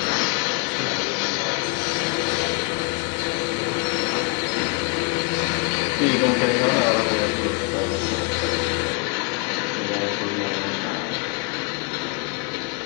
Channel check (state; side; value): quieter; right; 29.9 dB